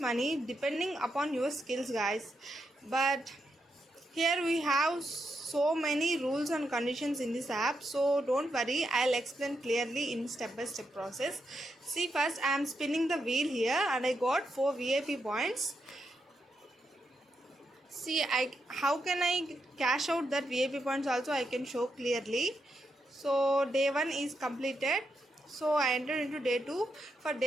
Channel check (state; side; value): normal; both; correlation 0.83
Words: depending upon your skills, guys. But here we have so many rules and conditions in this app, so don't worry, I'll explain clearly in step by step process. See, first I am spinning the wheel here and I got 4 VIP points. See, how can I cash out that VIP points also I can show clearly. So day 1 is completed, so I entered into day 2. For